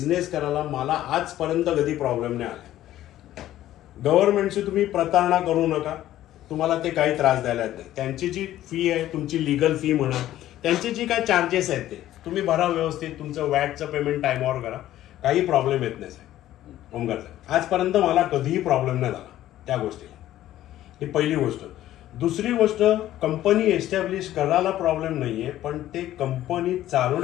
करायला मला आजपर्यंत कधी प्रॉब्लेम नाही आला. गव्हर्नमेंटची तुम्ही प्रतारणा करू नका, तुम्हाला ते काही त्रास द्यायला नाही. त्यांची जी फी आहे, तुमची लिगल फी म्हणा त्यांची जी काय चार्जेस आहेत ते तुम्ही भरा व्यवस्थित, तुमचं वॅटचं पेमेंट टाइमवर करा, काही प्रॉब्लेम येत नाही साहेब. ओमकार साहेब, आजपर्यंत मला कधीही प्रॉब्लेम नाही झाला त्या गोष्टीला. ही पहिली गोष्ट. दुसरी गोष्ट, कंपनी एस्टॅब्लिश करायला प्रॉब्लेम नाहीये, पण ते कंपनी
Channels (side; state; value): right; quieter; 13.5 dB